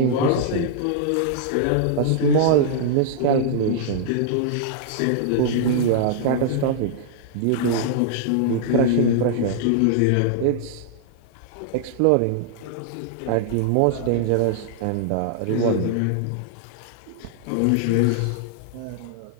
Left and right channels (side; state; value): both; different; correlation -0.01